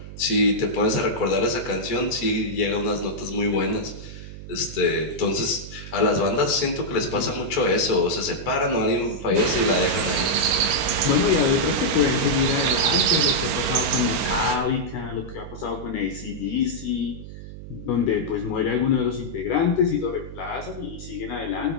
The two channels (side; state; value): right; noise; hum, 13 dB below the sound